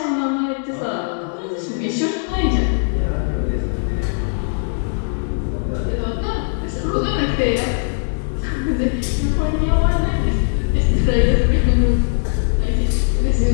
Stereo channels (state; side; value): silent; right; digital silence